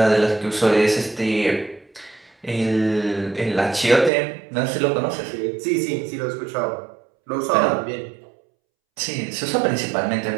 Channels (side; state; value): left; drops out; at 4.1 s